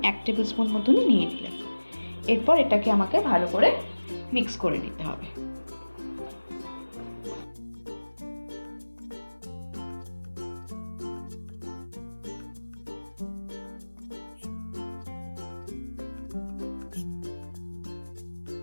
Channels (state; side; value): inverted; both; correlation -1.00